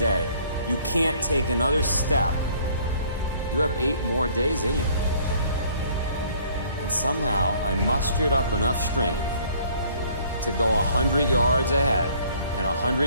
you can't take another step, you have 8 more days in you. And somehow I mustered up enough strength to go 100 yards ahead, and 100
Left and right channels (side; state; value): both; inverted; correlation -0.58